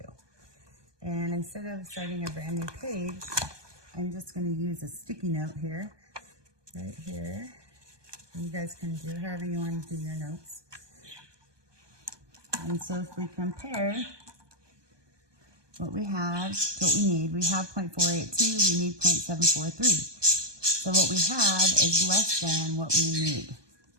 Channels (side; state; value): left; late; 1.2 ms